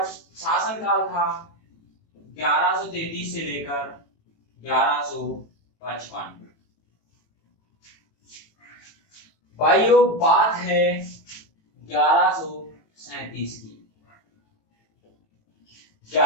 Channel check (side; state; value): right; late; 19 ms